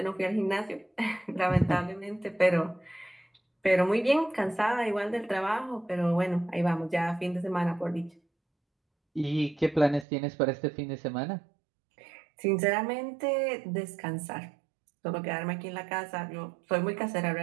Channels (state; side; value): drops out; left; at 10.1 s